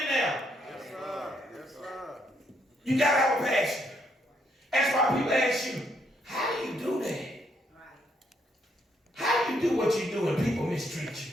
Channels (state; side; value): normal; both; correlation 0.73